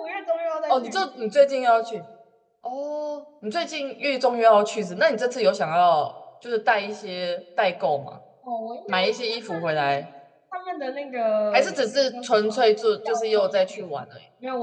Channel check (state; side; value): identical; both; correlation 1.00